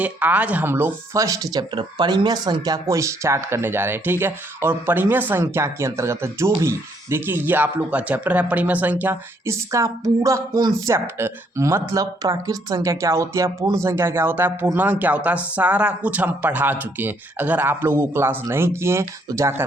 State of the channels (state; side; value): normal; both; correlation 0.69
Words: आज हम लोग फर्स्ट चैप्टर परिमेय संख्या को स्टार्ट करने जा रहे हैं। ठीक है, और परिमेय संख्या के अंतर्गत जो भी देखिए ये आप लोग का चैप्टर है परिमेय संख्या, इसका पूरा कॉन्सेप्ट मतलब प्राकृत संख्या क्या होती है, पूर्ण संख्या क्या होता है, पूर्णांक क्या होता है, सारा कुछ हम पढ़ा चुके हैं। अगर आप लोग वो क्लास नहीं किए हैं तो जाकर